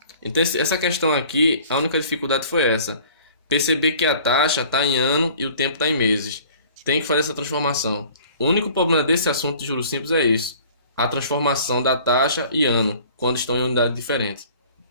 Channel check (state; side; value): inverted; both; correlation -0.49